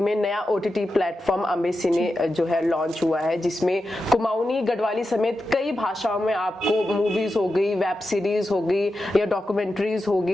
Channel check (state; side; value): normal; both; correlation 0.90